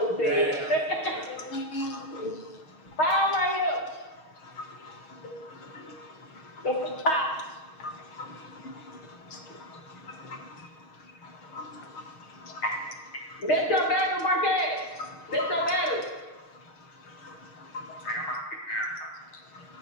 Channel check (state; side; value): late; right; 6.4 ms